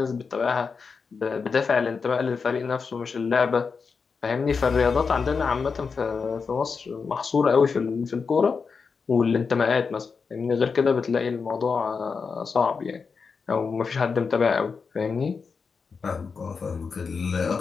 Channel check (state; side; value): quieter; right; 5.2 dB